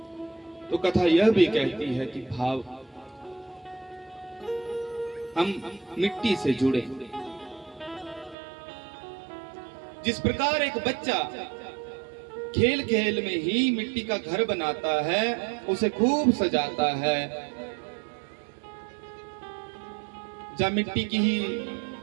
तो कथा यह भी कहती है कि भाव, हम मिट्टी से जुड़े। जिस प्रकार एक बच्चा खेल खेल में ही मिट्टी का घर बनाता है, उसे खूब सजाता है, जब मिट्टी की ही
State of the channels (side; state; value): left; drops out; at 8.3 s